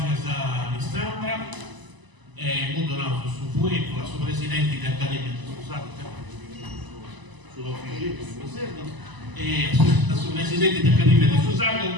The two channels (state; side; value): late; left; 1.0 ms